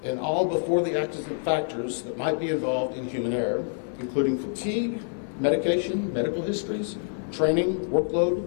and all before the accident factors that might be involved in human error, including fatigue, medication, medical histories, training, workload,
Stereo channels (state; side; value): silent; right; digital silence